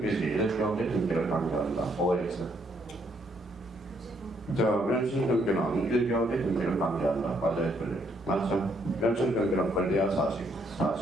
이렇게 경제 등기를 강조한다. OX. 자, 멸실 등기는 1개월의 등기를 강조한다. 맞아요, 틀려요. 맞죠? 멸실 등기는 권리와 사실.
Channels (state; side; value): normal; both; correlation 0.71